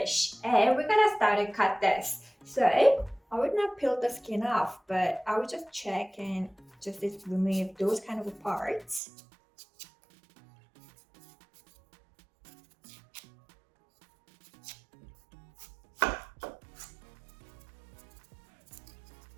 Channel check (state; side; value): drops out; left; at 9.0 s